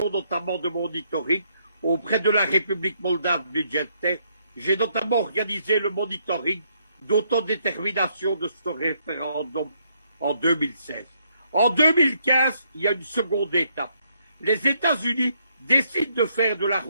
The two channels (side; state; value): both; inverted; correlation -0.73